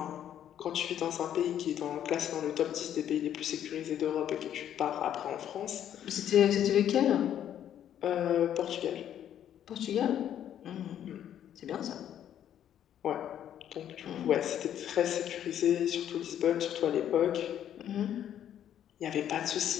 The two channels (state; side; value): quieter; right; 10.3 dB